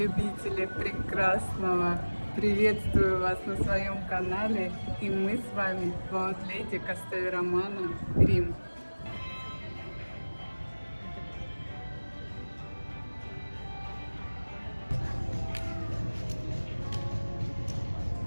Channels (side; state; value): both; inverted; correlation -1.00